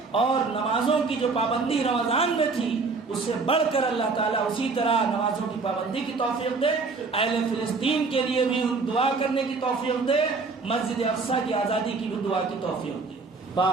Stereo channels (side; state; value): left; quieter; 4.2 dB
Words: اور نمازوں کی جو پابندی رمضان میں تھی اس سے بڑھ کر اللہ تعالیٰ اسی طرح نمازوں کی پابندی کی توفیق دے، اہل فلسطین کے لیے بھی دعا کرنے کی توفیق دے، مسجد اقصیٰ کی آزادی کی بھی دعا کی توفیق دے۔